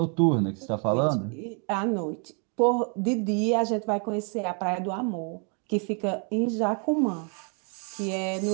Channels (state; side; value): quieter; left; 39.3 dB